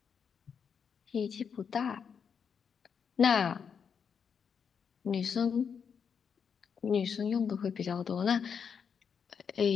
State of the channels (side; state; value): right; quieter; 6.8 dB